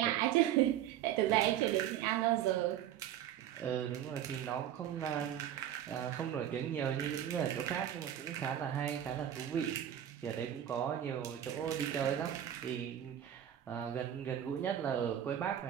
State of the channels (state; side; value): quieter; left; 10.7 dB